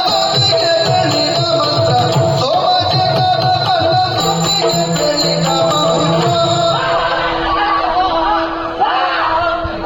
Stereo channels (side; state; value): both; identical; correlation 1.00